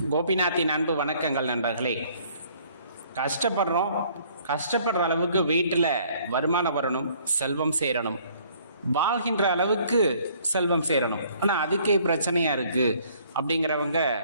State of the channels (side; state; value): both; inverted; correlation -0.60